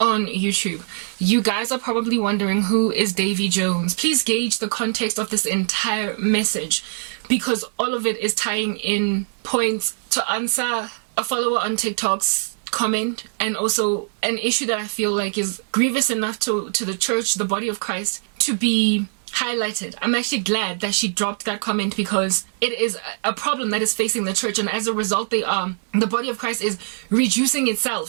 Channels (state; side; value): silent; left; digital silence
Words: YouTube. You guys are probably wondering, who is Davy Jones? Please gauge the context of this entire message, because all of it is tying in points to answer a follower on TikTok's comment, and also an issue that I feel like is grievous enough to the church, the body of Christ, to be highlighted. I'm actually glad that she dropped that comment, because it is a problem that is facing the church, and as a result the body of Christ is reducing